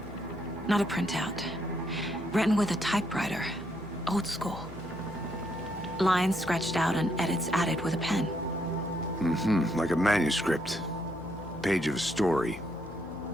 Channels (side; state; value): left; noise; hum, 15 dB below the sound